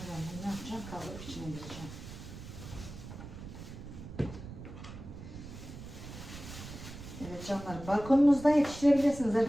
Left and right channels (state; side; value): noise; right; rumble, 12 dB below the sound